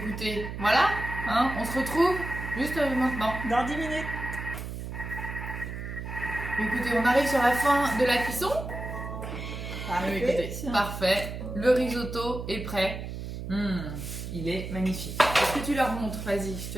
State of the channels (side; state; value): right; noise; hum, 7 dB below the sound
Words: voilà. On se retrouve juste maintenant. Dans 10 minutes. Écoutez, on arrive sur la fin de la cuisson. Parfait. Parfait. Le risotto est prêt. Il est magnifique. Est-ce que tu leur montres? Vas-y, je